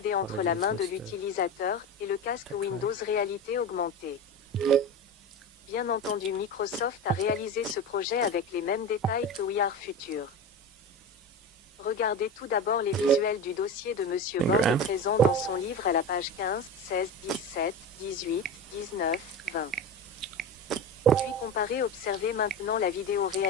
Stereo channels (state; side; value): normal; both; correlation 0.25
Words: entre la main de l'utilisateur, et le casque Windows Réalité Augmentée. Bien entendu, Microsoft a réalisé ce projet avec les mêmes détails que We Are Future. Regardez tout d'abord les visuels du dossier de Monsieur Borde présent dans son livre à la page 15, 16, 17, 18, 19, 20. Puis comparez, observez maintenant la vidéo